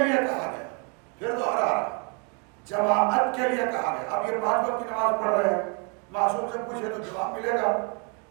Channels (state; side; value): quieter; left; 35.2 dB